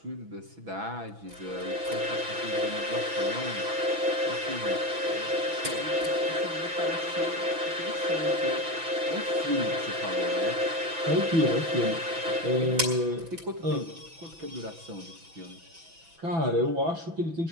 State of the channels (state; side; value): late; left; 6.0 ms